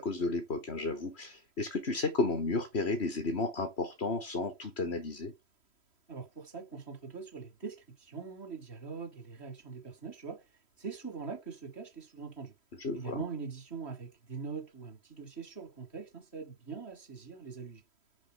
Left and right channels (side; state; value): right; late; 3.1 ms